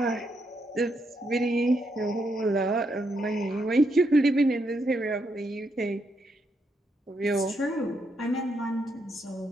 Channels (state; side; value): normal; both; correlation 0.79